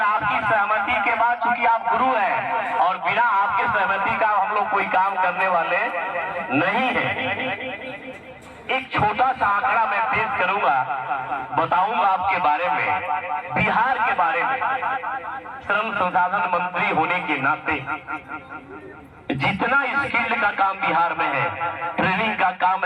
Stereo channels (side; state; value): both; identical; correlation 1.00